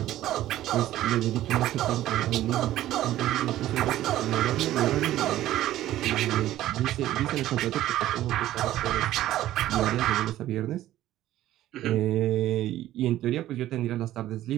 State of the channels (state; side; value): quieter; left; 13.9 dB